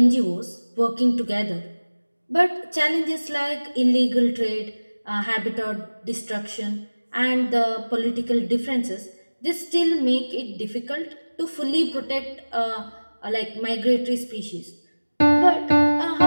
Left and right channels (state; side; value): inverted; both; correlation -1.00